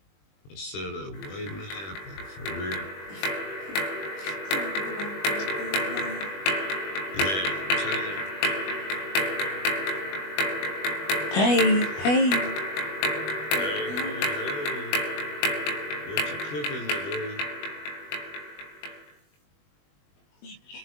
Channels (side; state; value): right; late; 21 ms